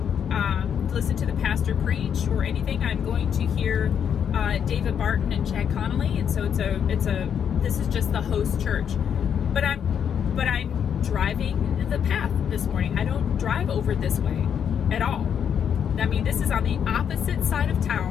listen to the pastor preach or anything. I'm going to hear David Barton and Chad Connolly, and so this is just the host church. But I'm driving the path this morning. I don't drive over this way at all. I mean, this is on the opposite side of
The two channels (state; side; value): quieter; right; 8.1 dB